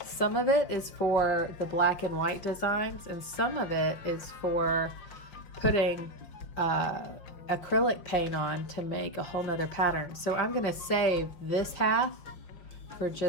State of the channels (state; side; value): late; right; 5.7 ms